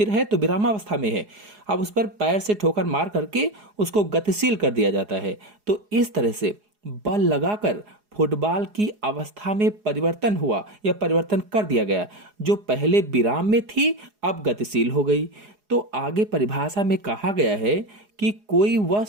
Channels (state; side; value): late; left; 4.8 ms